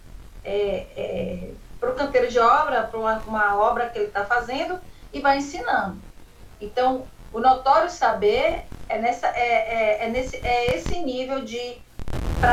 o canteiro de obra, para uma obra que ele está fazendo, e vai ensinando. Então, o notório saber é esse nível de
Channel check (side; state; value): both; identical; correlation 1.00